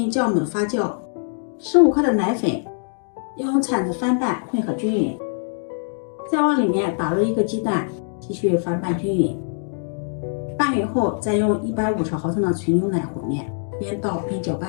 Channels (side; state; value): right; silent; 64 dB below the other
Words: 酵母的发酵，15克的奶粉，用铲子翻拌混合均匀，再往里面打入1个鸡蛋，继续翻拌均匀。拌匀后再用150毫升的纯牛奶和面，边倒边搅